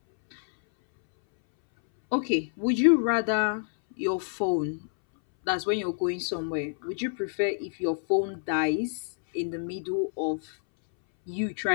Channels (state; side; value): silent; right; 60 dB below the other